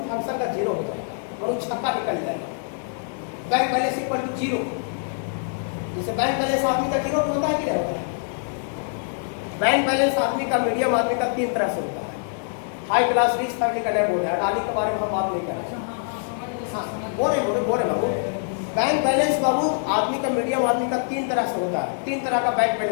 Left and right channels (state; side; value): silent; right; 62 dB below the other